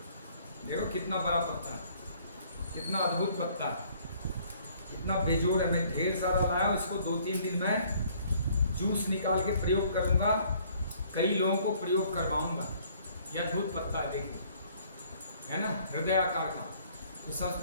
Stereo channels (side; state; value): both; inverted; correlation -0.60